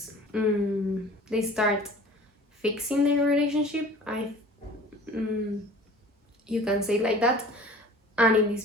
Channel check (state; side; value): normal; both; correlation 0.45